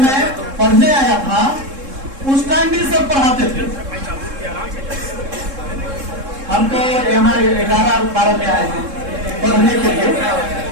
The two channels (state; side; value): late; left; 3.7 ms